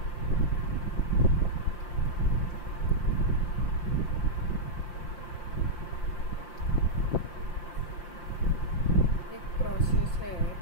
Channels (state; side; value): late; right; 5.8 ms